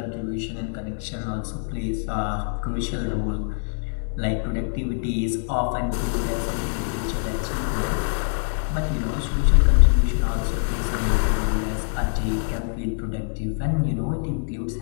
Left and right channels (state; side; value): silent; right; 60 dB below the other